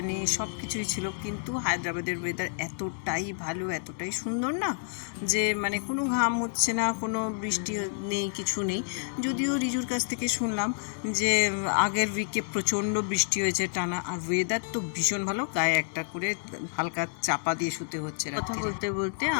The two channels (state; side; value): silent; right; digital silence